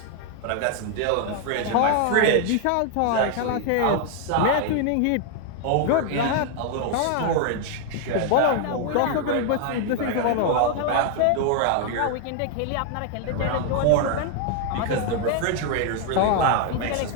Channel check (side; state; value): both; different; correlation 0.00